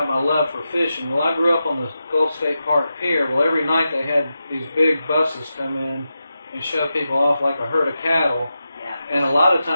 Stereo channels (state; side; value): inverted; both; correlation -0.89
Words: my love for fishing. Well, I grew up on the Gulf State Park Pier. Well, every night they had these big buses come in and show people off like a herd of cattle. Yeah. And a lot of